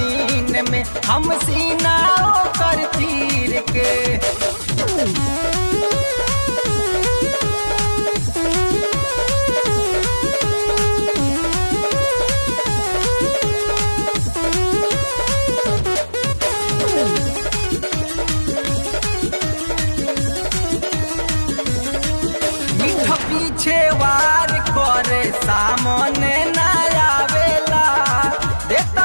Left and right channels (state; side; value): inverted; both; correlation -1.00